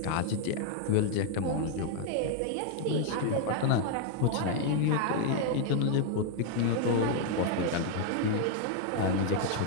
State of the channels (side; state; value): both; different; correlation 0.00